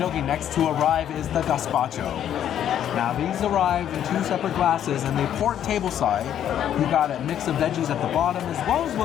Next to arrive is the Gazpacho. Now these arrive in two separate glasses and they port tableside. You got a mix of veggies at the bottom as well as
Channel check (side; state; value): right; quieter; 10.2 dB